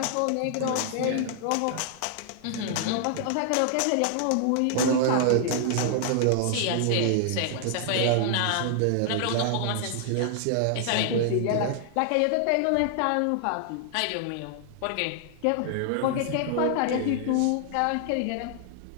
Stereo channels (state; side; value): different; both; correlation 0.00